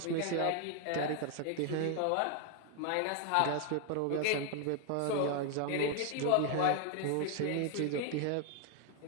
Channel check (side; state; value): both; different; correlation 0.01